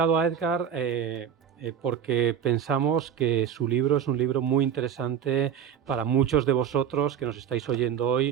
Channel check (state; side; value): quieter; left; 8.4 dB